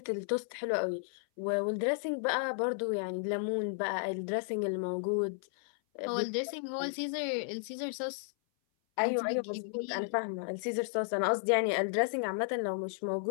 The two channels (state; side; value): silent; right; 55 dB below the other